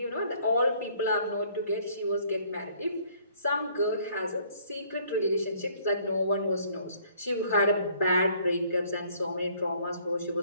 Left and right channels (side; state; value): both; inverted; correlation -0.60